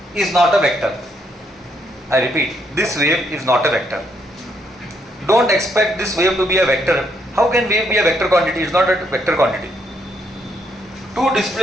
is not a vector. I repeat, this wave is not a vector. Don't expect this wave to be a vector. How can wave be a vector quantity? It's not a vector quantity. Two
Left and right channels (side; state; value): both; normal; correlation 0.74